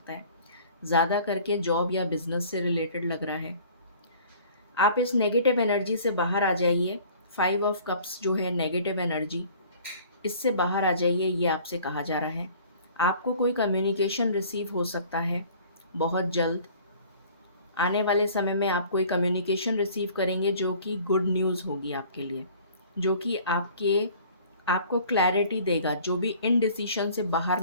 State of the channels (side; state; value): both; inverted; correlation -0.50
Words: है। ज़्यादा करके जॉब या बिज़नेस से रिलेटेड लग रहा है। आप इस नेगेटिव एनर्जी से बाहर आ जाइए। 5 ऑफ कप्स जो है नेगेटिव एनर्जी, इससे बाहर आ जाइए, ये आपसे कहा जा रहा है। आपको कोई कम्युनिकेशन रिसीव हो सकता है बहुत जल्द। आने वाले समय में आप कोई कम्युनिकेशन रिसीव करेंगे जो कि गुड न्यूज़ होगी आपके लिए, जो कि आपको क्लैरिटी देगा, जो भी इनडिसीशन से बाहर